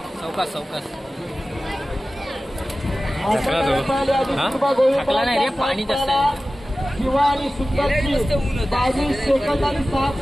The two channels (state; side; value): normal; both; correlation 0.96